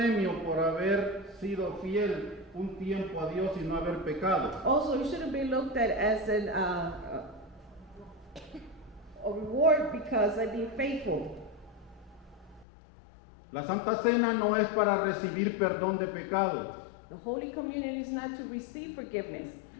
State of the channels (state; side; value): drops out; right; at 12.7 s